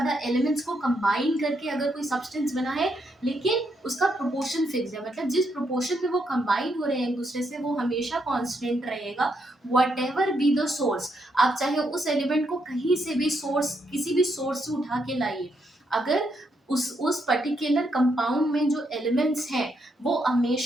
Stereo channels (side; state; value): both; normal; correlation 0.78